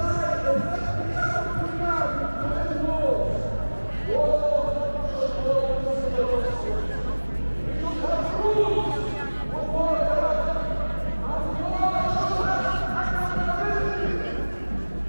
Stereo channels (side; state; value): both; inverted; correlation -1.00